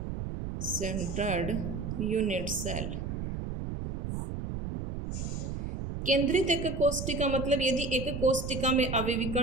centred unit cell. केंद्रित एक कोष्टिका मतलब यदि एक कोष्टिका में अवयवी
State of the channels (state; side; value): noise; right; rumble, 5 dB below the sound